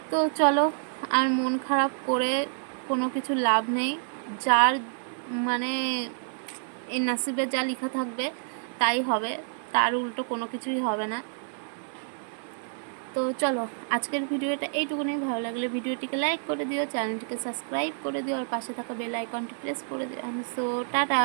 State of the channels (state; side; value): silent; left; 56 dB below the other